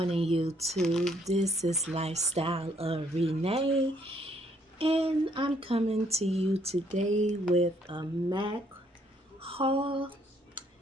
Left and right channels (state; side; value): normal; both; correlation 0.68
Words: YouTube. This is Lifestyle of Renee, and I'm coming to you today with a MAC haul.